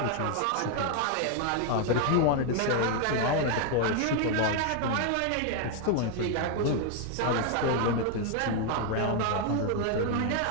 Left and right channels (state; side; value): different; both; correlation 0.01